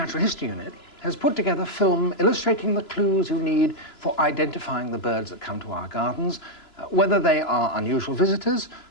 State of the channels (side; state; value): right; late; 2.9 ms